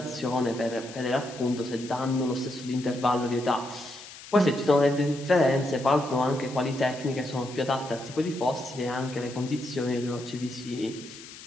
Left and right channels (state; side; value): noise; left; hiss, 16 dB below the sound